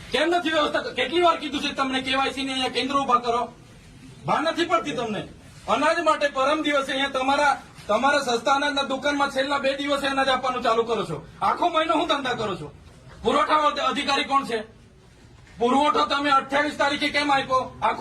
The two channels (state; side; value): identical; both; correlation 1.00